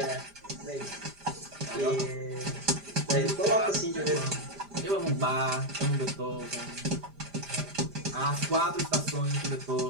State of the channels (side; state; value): left; late; 5.0 ms